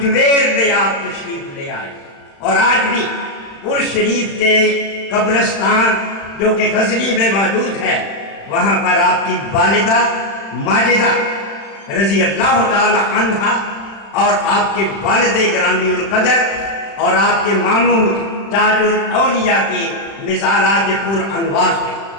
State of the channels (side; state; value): right; late; 36 ms